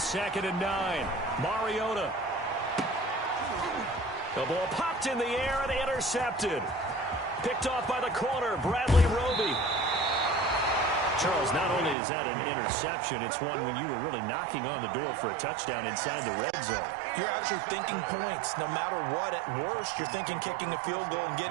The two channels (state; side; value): drops out; left; at 12.0 s